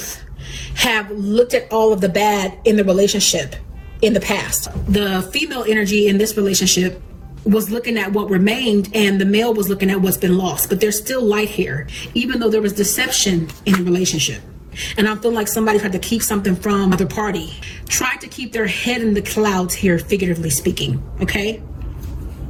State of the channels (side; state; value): both; identical; correlation 1.00